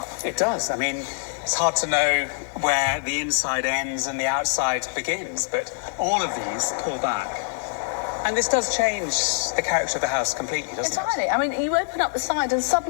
It does. I mean, it's hard to know where the inside ends and the outside begins, but all of these pull back. And this does change the character of the house completely, doesn't Entirely. I mean, you open up the side and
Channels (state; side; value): silent; right; digital silence